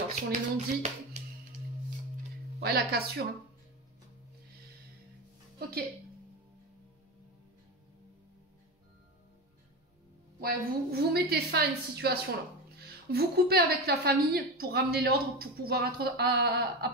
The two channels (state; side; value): normal; both; correlation 0.21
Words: sur les non-dits. Ouais, la cassure. Hein. Ok. Ouais, vous mettez fin à une situation, là. Vous coupez avec la famille pour ramener l'ordre, pour pouvoir